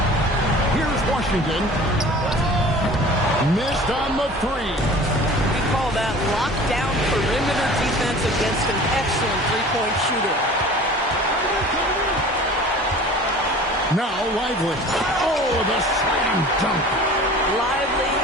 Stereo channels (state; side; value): normal; both; correlation 0.43